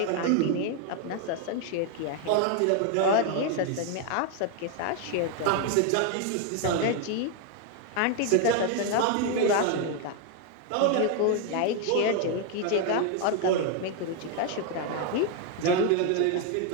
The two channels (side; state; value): both; different; correlation 0.01